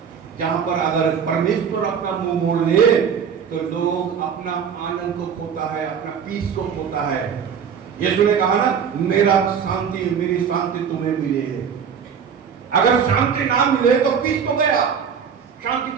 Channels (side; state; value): left; quieter; 7.2 dB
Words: जहां पर अगर परमेश्वर अपना मुंह मोड़ ले तो लोग अपना आनंद को खोता है, अपना पीस को खोता है। यीशु ने कहा ना, मेरा शांति, मेरी शांति तुम्हें मिले। अगर शांति ना मिले तो पीस तो गया, शांति